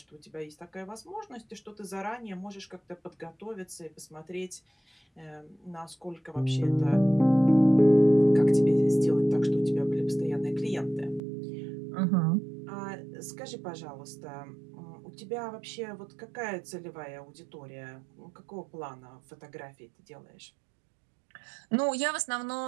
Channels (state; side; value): drops out; left; at 11.2 s